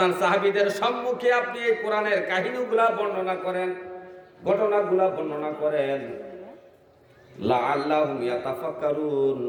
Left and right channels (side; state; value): both; identical; correlation 1.00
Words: সাহাবীদের সম্মুখে আপনি এই কোরআনের কাহিনীগুলা বর্ণনা করেন, ঘটনাগুলা বর্ণনা করেন। লাআল্লাহুম ইয়াতাফাক্কারুন,